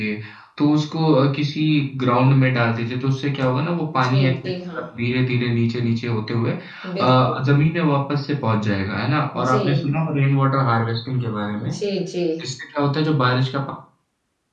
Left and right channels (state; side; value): identical; both; correlation 1.00